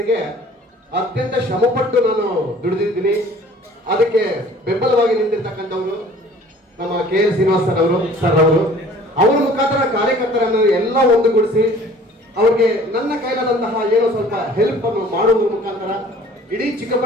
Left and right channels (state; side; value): normal; both; correlation 0.51